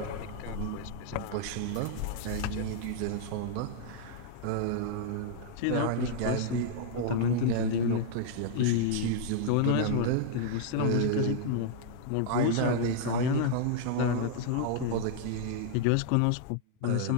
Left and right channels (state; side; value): different; both; correlation -0.01